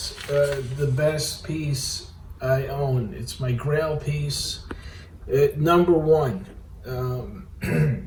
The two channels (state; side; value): identical; both; correlation 1.00